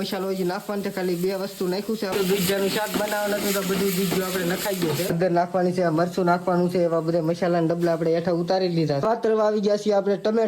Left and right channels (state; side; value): identical; both; correlation 1.00